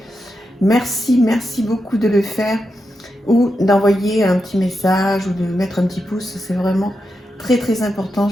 Merci beaucoup de le faire ou d'envoyer un petit message ou de mettre un petit pouce. C'est vraiment très important.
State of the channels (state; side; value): normal; both; correlation 0.87